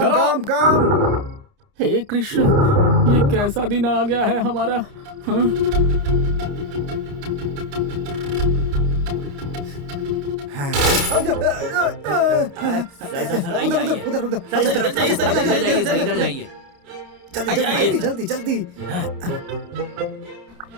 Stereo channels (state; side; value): late; left; 29 ms